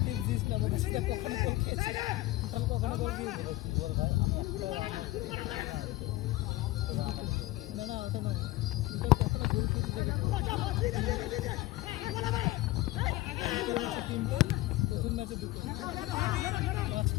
টিপস দিস না, বলছিস কখনো বল খেয়েছি কখনো বল দিয়েছি বল ভাই আমি একটা না না ওটা না, ওটা কখনো গোল খেয়েছি তিনটে, প্রথম ম্যাচে দুটো,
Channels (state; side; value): quieter; right; 17.9 dB